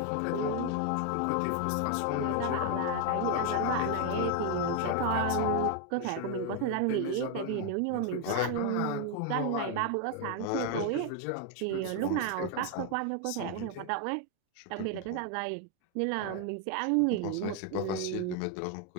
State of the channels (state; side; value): different; both; correlation 0.01